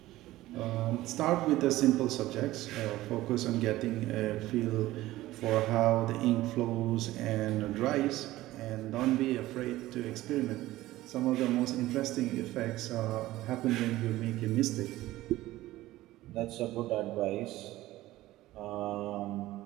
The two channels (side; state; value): left; quieter; 16.5 dB